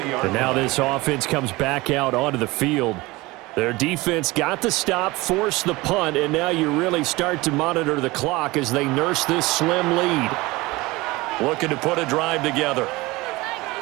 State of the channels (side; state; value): left; quieter; 21.5 dB